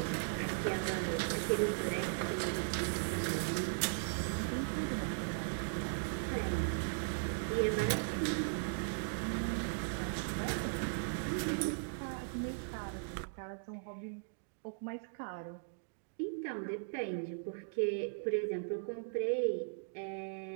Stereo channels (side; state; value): left; silent; digital silence